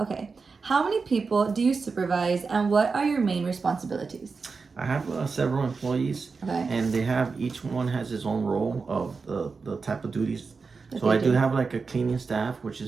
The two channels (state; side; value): quieter; left; 4.7 dB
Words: how many people do you supervise, and what are your main responsibilities? I have several employees, Okay. and each one has his own role of the type of duties. That So they I do do. have like a cleaning staff, which